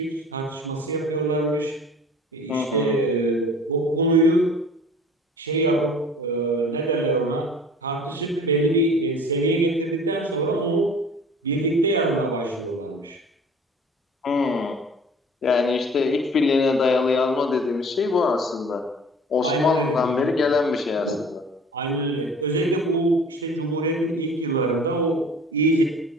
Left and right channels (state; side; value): normal; both; correlation 0.47